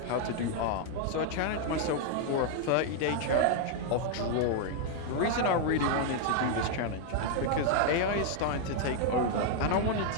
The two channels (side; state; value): both; different; correlation 0.00